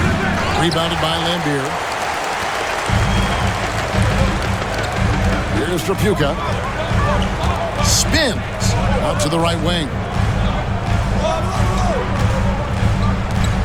Rebounded by Lambier. Here's Trapuka. Spins out to the right wing.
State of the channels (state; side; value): identical; both; correlation 1.00